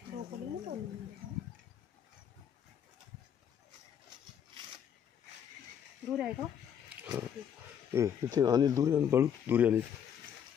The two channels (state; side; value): quieter; right; 8.6 dB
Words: दूर आहे का? इथे आणि दुरी आणि बाळू दुरी आणि